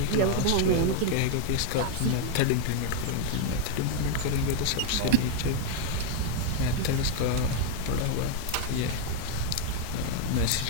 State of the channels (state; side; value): different; both; correlation 0.00